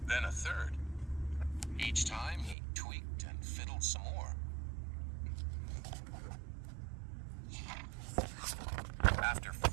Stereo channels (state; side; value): drops out; left; at 2.6 s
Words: then a third. Each time he tweaked and fiddled some more. After